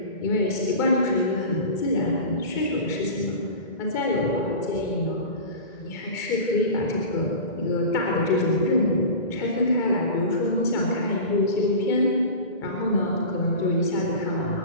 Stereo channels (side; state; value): right; late; 2.3 ms